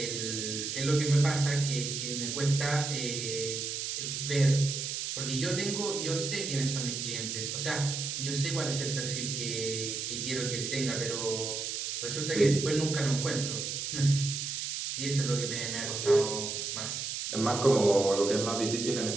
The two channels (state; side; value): noise; right; hiss, 3 dB below the sound